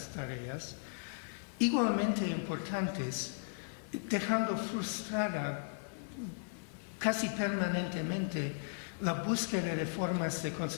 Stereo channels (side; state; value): right; silent; digital silence